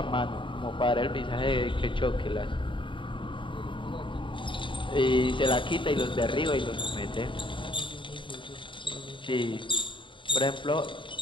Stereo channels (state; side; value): late; right; 0.24 ms